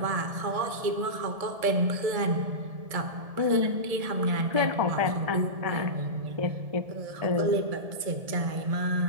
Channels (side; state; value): left; late; 1.7 ms